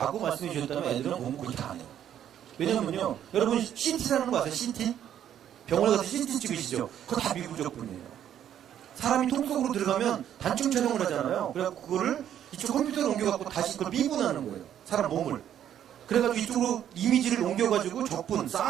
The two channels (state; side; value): quieter; left; 10.3 dB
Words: 말씀해 주셨다면 애들은 공부 그렇게 안 해요. 왜냐면요, 여러분 CT라는 거 아세요? CT? 병원에 가서 CT 찍으시죠? 그거 다 미분적분이에요. 사람이 통 속으로 들어가면 단층 촬영을 하잖아요. 그래갖고 그거를 이쪽 컴퓨터로 옮겨갖고 다시 그걸 미분하는 거예요. 사람 몸을. 그래가지고 이쪽으로 이미지를 옮겨가지고 적분